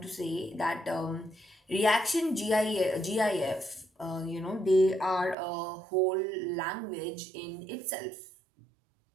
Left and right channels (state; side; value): drops out; left; at 5.4 s